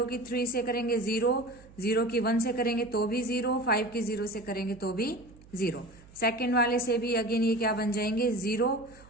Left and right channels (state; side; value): noise; right; hum, 23 dB below the sound